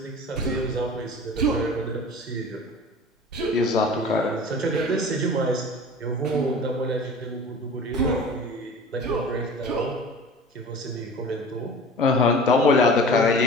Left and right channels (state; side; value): normal; both; correlation 0.40